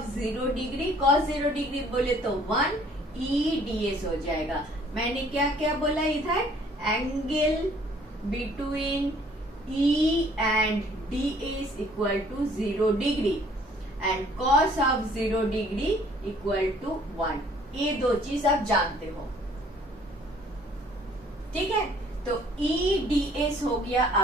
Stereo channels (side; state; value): both; normal; correlation 0.58